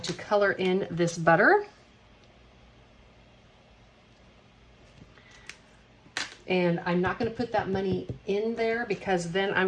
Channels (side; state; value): both; identical; correlation 1.00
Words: to color in this butter. And I'm not going to put that money in there because then